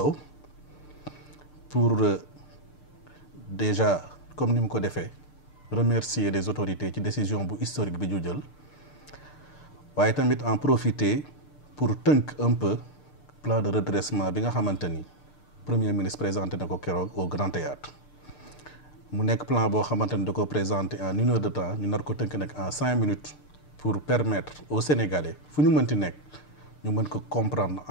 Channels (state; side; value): late; right; 6.7 ms